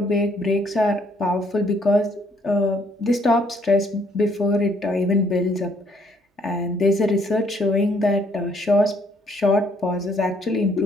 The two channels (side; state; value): both; normal; correlation 0.67